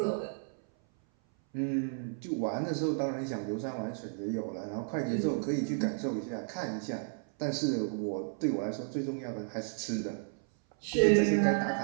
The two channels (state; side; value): silent; left; 56 dB below the other